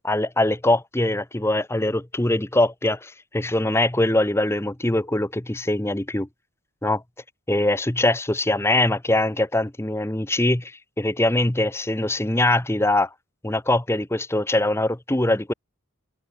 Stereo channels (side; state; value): both; normal; correlation 0.68